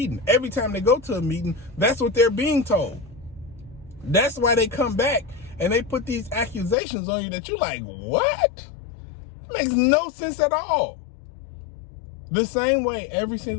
Every time they go to a meeting, that's what they're being told. That's why they come back and they put these accusations on you that you're like, what? It makes no sense at all. The same way, every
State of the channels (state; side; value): drops out; right; at 6.8 s